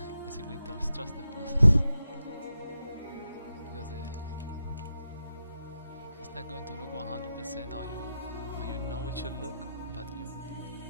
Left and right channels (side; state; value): both; inverted; correlation -0.88